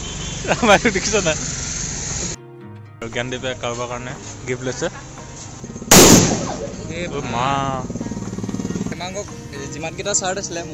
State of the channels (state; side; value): identical; both; correlation 1.00